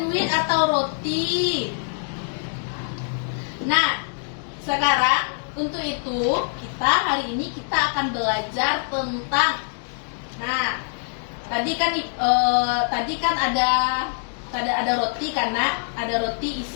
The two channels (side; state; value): right; silent; digital silence